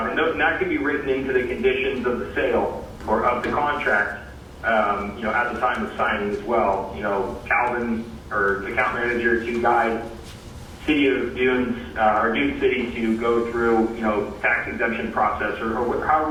that can be written into the conditions of the sale or of the contract, at the time of signing as well. Calvin or the account manager to guide City of Dunes, or Dune City to go through, tax exemption process or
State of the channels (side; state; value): both; identical; correlation 1.00